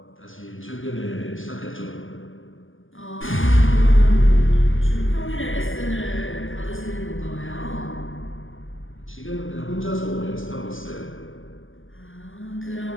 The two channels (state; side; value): late; right; 0.58 ms